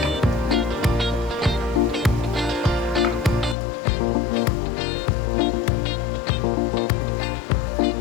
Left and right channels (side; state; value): right; drops out; at 3.6 s